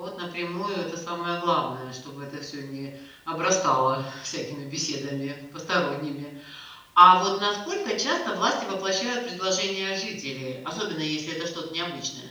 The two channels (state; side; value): identical; both; correlation 1.00